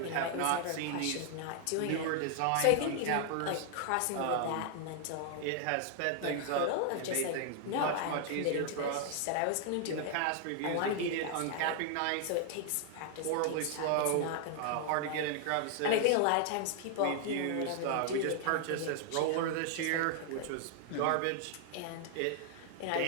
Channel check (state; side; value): different; both; correlation 0.00